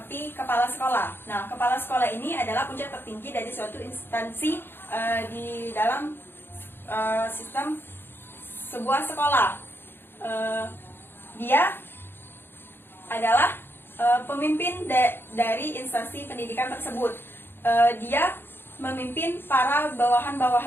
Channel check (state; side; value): late; right; 0.10 ms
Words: kepala sekolah. Nah, kepala sekolah ini adalah puncak tertinggi dari suatu instansi di dalam sistem sebuah sekolah. Dia adalah pemimpin dari instansi pendidikan tersebut. Dia memimpin para